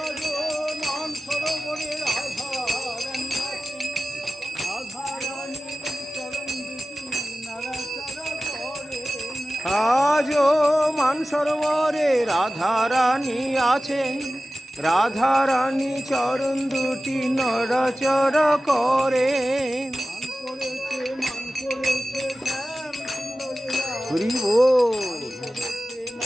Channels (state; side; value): normal; both; correlation 0.95